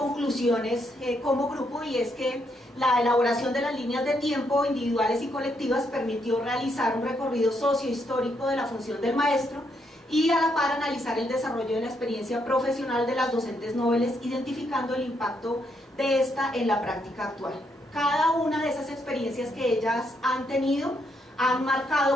como grupo, y es que la elaboración de las líneas de tiempo individuales y colectivas permitió realizar un recorrido sociohistórico de la función del maestro y a la par analizar el desarrollo de la experiencia profesional de las docentes noveles, identificando el impacto de esta en la práctica actual. Cada una de esas experiencias que ellas han tenido han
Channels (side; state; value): both; normal; correlation 0.76